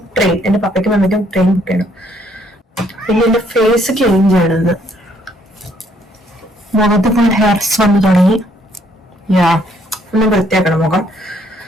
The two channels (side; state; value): both; normal; correlation 0.67